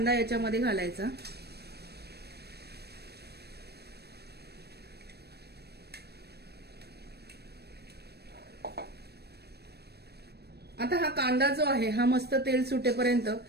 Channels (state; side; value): late; left; 0.47 ms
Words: याच्यामध्ये घालायचा. आता हा कांदा जो आहे हा मस्त तेल सुटेपर्यंत